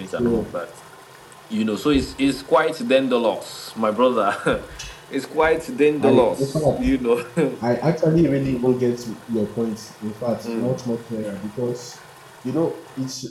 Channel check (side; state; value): both; identical; correlation 1.00